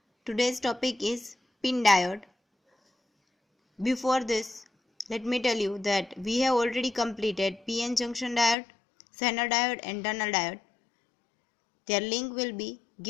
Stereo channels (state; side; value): drops out; right; at 8.6 s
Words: Today's topic is pin diode. Before this, let me tell you that we have already completed PN junction diode, Zener diode and tunnel diode. Their link will be